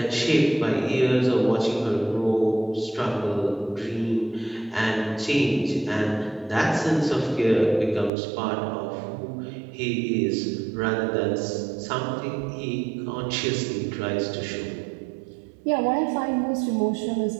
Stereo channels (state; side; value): drops out; left; at 8.1 s